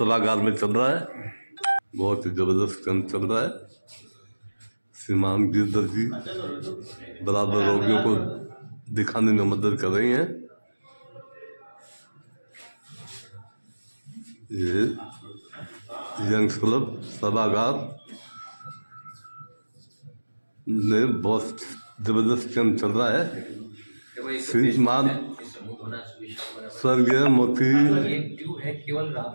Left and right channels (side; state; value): both; inverted; correlation -1.00